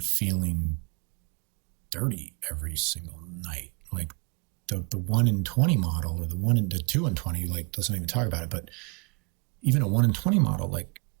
feeling dirty every single night. Like the 1 in 20 model, or the 2 in 20, like, doesn't even talk about it, but even a 1 in 20 model, like,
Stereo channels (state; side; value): quieter; left; 33.6 dB